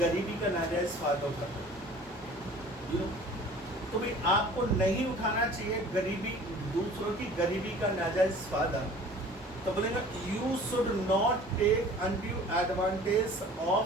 का नाजायज फायदा उठाते हैं। तो भाई आपको नहीं उठाना चाहिए गरीबी, दूसरों की गरीबी का नाजायज फायदा। तो बोलेंगे you should not take undue advantage of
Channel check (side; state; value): both; normal; correlation 0.47